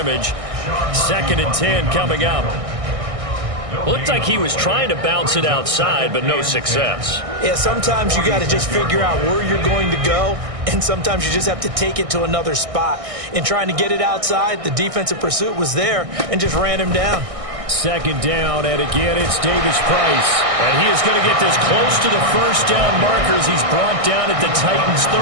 2nd and 10 coming up. Looked like he was trying to bounce it outside, but no success. Yeah, sometimes you got to just figure out where you're going to go, and sometimes you just have to take it to another spot. In trying to get it outside, the defensive pursuit was there and just ran him down. 2nd down, and again, it's Davis Price. And he is going to get this close to the first down markers. He's brought down at the Titans'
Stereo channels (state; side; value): late; left; 1.6 ms